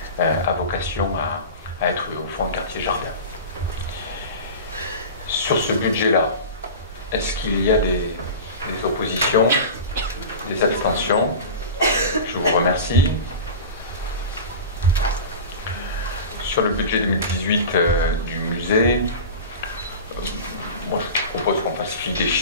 à vocation à à être au fond un quartier jardin. Sur ce budget-là, est-ce qu'il y a des oppositions, des abstentions? Je vous remercie. Sur le budget 2018 du musée, moi je propose qu'on falsifie des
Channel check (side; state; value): both; inverted; correlation -0.31